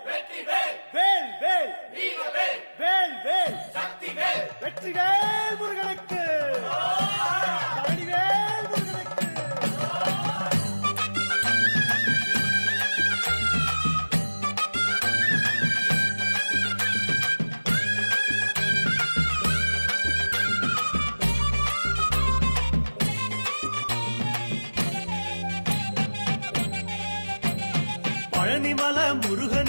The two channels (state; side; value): inverted; both; correlation -1.00